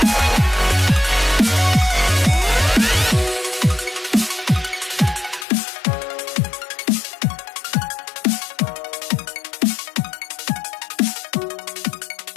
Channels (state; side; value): drops out; right; at 5.5 s